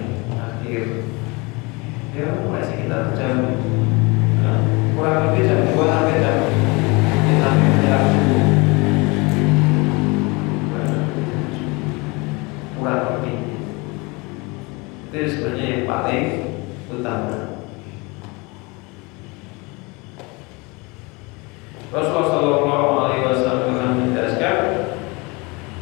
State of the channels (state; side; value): quieter; right; 26.8 dB